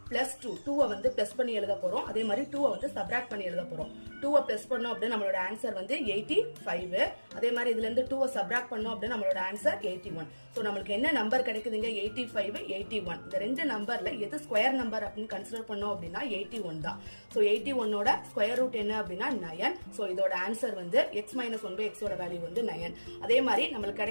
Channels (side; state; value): both; inverted; correlation -1.00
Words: +2 2 வந்து பிளஸ் பண்ணி எழுத போறோம். அதே மாதிரி 2 வந்து சப்ட்ராக்ட் பண்ணி எழுத போறோம். 2 பிளஸ் பண்ணோம் அப்படினா நம்மளோட ஆன்சர் வந்து 85. அதே மாதிரி இதுல இருந்து 2 சப்ட்ராக்ட் பண்ணோம் அப்படினா நம்மளோட ஆன்சர் 81. சோ நமக்கு என்ன நம்பர் கிடைக்குதுங்க? 85 81. இந்த ரெண்டு நம்பர்ல எது ஸ்கொயர் நம்பர் அப்படினு கன்சிடர் பண்ணோம் அப்படினா 81 தான். சோ 81 ஓட ஸ்கொயர் ரூட் என்ன அப்படினா 9. சோ இதோட ஆன்சர் வந்து x - 1 / x ஓட வேல்யூ வந்து 9. அதே மாதிரி நமக்கு